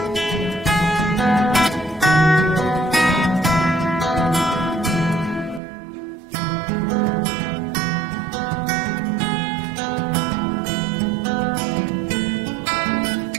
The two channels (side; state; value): left; drops out; at 5.6 s